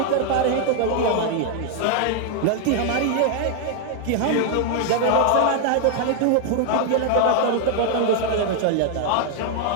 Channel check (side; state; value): both; different; correlation 0.00